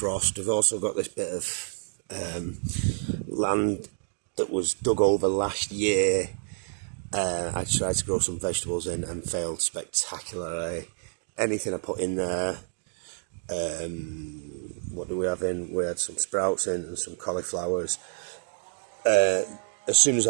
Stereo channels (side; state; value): left; silent; digital silence